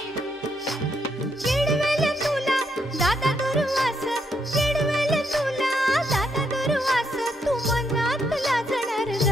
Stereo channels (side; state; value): both; normal; correlation 0.77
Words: चिडवेल तुला दादा दुर्वास चिडवेल तुला दादा दुर्वास तू मनात लाजणार